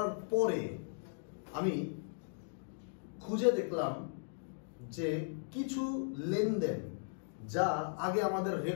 পরে আমি খুঁজে দেখলাম যে কিছু লেনদেন যা আগে আমাদের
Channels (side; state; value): right; silent; digital silence